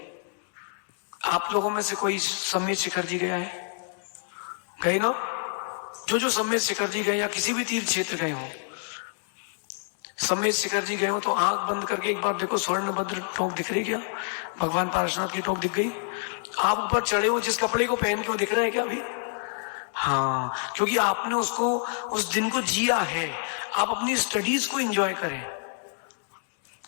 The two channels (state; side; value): silent; right; 60 dB below the other